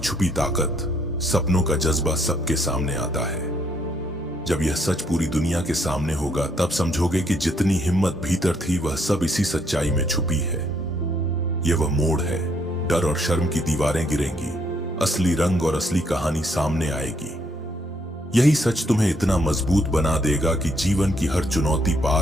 ताकत, सपनों का जज्बा सबके सामने आता है। जब यह सच पूरी दुनिया के सामने होगा, तब समझोगे कि जितनी हिम्मत भीतर थी, वह सब इसी सच्चाई में छुपी है। यह वह मोड़ है। डर और शर्म की दीवारें गिरेंगी, असली रंग और असली कहानी सामने आएगी। यही सच तुम्हें इतना मजबूत बना देगा कि जीवन की हर चुनौती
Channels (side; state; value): both; normal; correlation 0.71